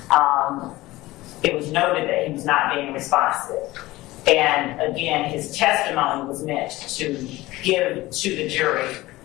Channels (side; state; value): right; quieter; 18.5 dB